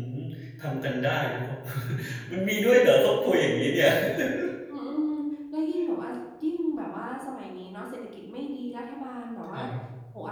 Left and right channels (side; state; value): both; identical; correlation 1.00